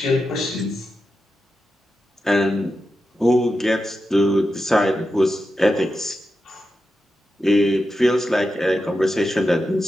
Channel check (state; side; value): normal; both; correlation 0.89